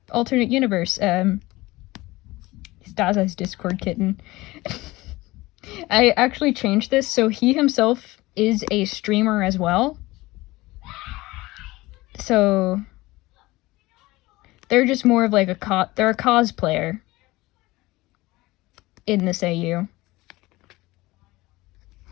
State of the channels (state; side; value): quieter; right; 19.9 dB